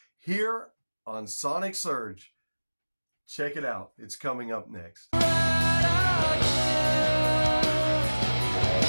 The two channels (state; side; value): inverted; both; correlation -1.00